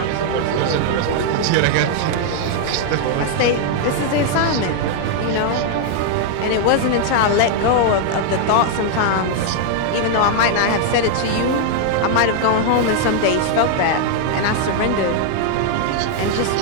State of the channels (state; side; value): different; both; correlation 0.00